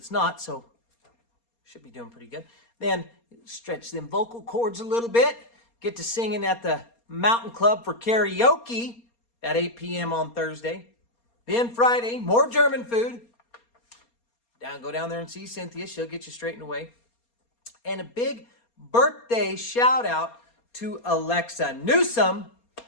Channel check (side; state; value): right; late; 4.3 ms